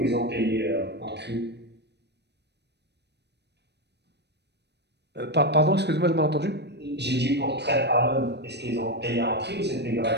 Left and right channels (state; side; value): late; left; 0.49 ms